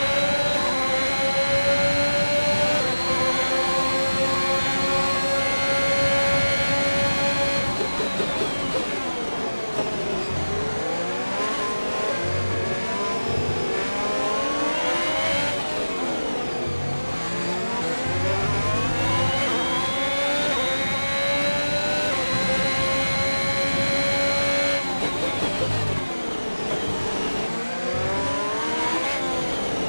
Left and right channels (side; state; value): both; inverted; correlation -1.00